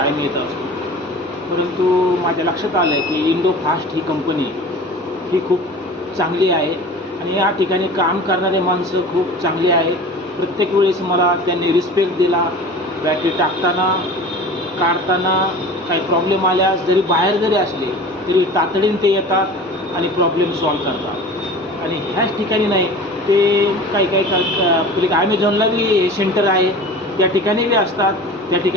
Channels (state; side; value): normal; both; correlation 0.38